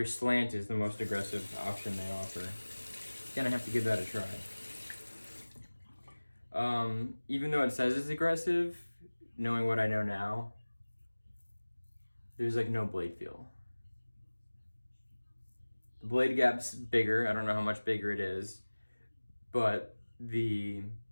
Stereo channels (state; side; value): inverted; both; correlation -1.00